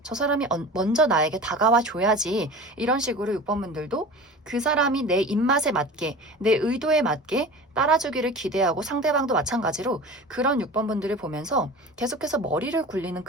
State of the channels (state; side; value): normal; both; correlation 0.36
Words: 저 사람이 먼저 나에게 다가와 줘야지. 이런 식으로 6번분들도 그 사람이 내 입맛에 맞게, 내 의도에 맞게 따라주기를 기대하고, 상대방도 마찬가지로 그런 6번분들을 보면서 계속해서 머리를 굴리는